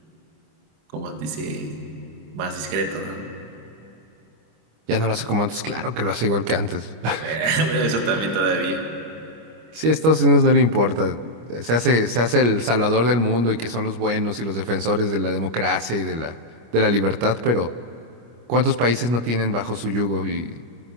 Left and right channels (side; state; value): left; late; 25 ms